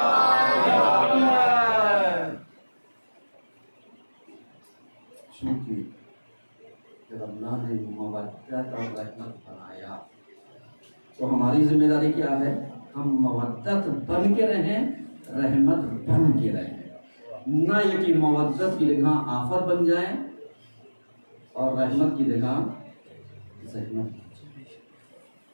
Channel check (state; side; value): inverted; both; correlation -1.00